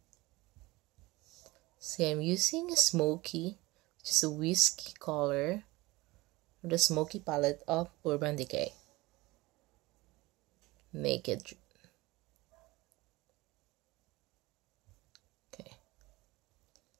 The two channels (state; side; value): quieter; left; 21.0 dB